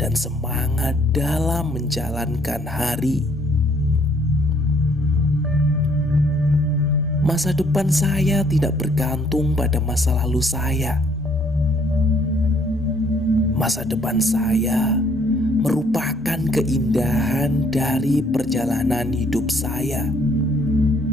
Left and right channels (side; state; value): both; normal; correlation 0.64